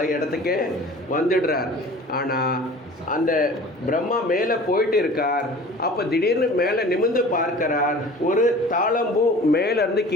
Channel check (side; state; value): both; normal; correlation 0.43